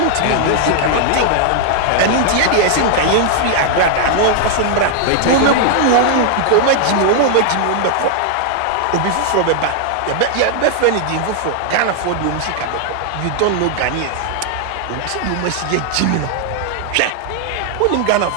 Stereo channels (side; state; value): both; different; correlation 0.00